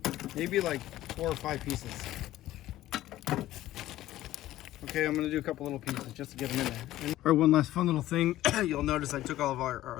Maybe like 4 or 5 pieces. Okay, I'm gonna do a couple little pieces just to get them in there. All right, one last fun little thing. You'll notice I took all of our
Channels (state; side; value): quieter; right; 14.8 dB